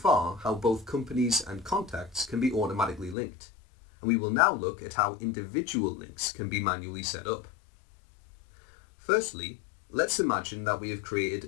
how both companies and contacts can be automatically linked, and we will now look at how individual links can be manually set up. Firstly, let's imagine that we have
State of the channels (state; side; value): drops out; right; at 3.2 s